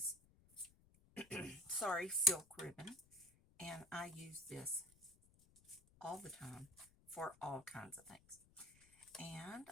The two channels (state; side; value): noise; left; rumble, 27 dB below the sound